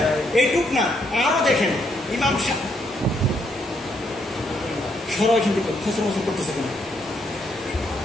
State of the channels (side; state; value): both; normal; correlation 0.74